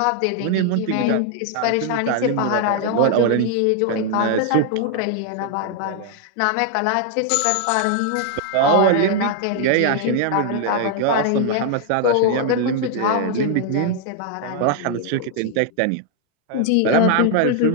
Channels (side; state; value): both; different; correlation 0.00